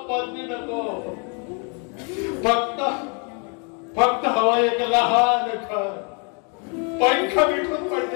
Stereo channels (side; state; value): right; quieter; 36.6 dB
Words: पदवी नको. फक्त हवा एक लहान घर, पंख बिठून